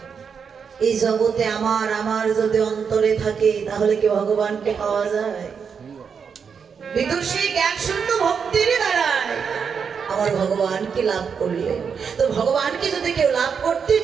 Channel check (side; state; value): left; quieter; 6.4 dB